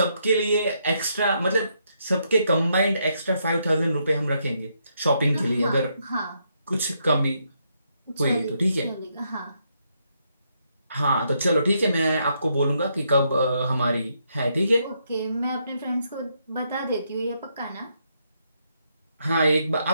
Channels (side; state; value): both; inverted; correlation -0.77